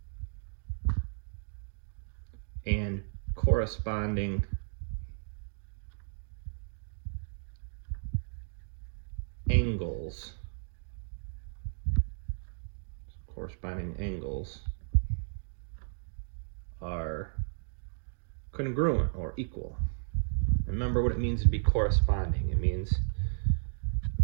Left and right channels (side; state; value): left; silent; digital silence